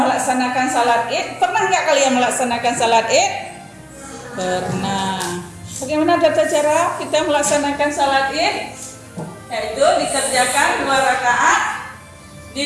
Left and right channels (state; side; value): identical; both; correlation 1.00